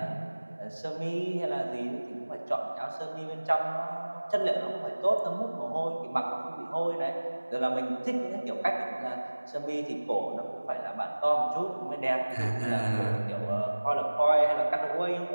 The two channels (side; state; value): both; inverted; correlation -1.00